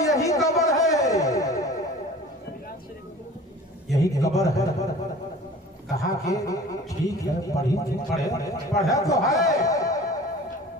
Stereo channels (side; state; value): both; normal; correlation 0.43